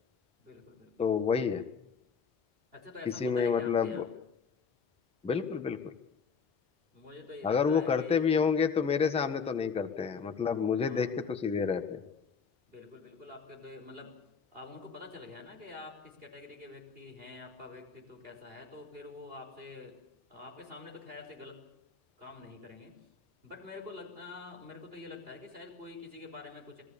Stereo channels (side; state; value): right; quieter; 5.8 dB